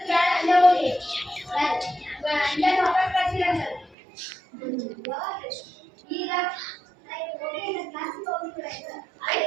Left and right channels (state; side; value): drops out; left; at 4.0 s